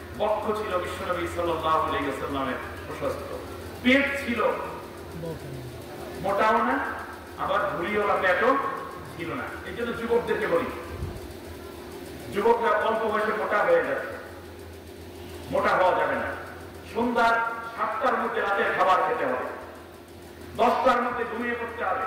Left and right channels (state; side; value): identical; both; correlation 1.00